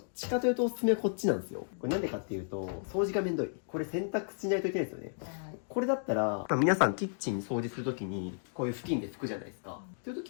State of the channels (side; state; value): right; silent; digital silence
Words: ちかというとおすすめはこっちなんですよ。これなんでかっていうと、掃除がめんどい。これ洗濯しないといけないですよね。はい。これだったら、皆さんキッチン掃除するときに、こういう布巾で拭くじゃないですか。っていうと